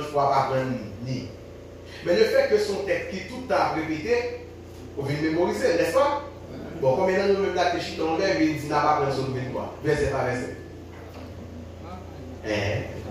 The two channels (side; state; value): both; identical; correlation 1.00